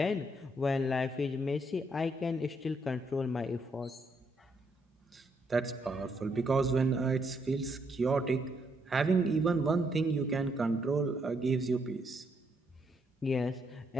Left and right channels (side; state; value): both; normal; correlation 0.74